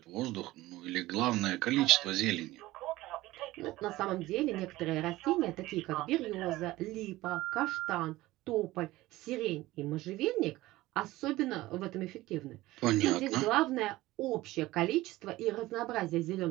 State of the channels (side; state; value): left; quieter; 17.8 dB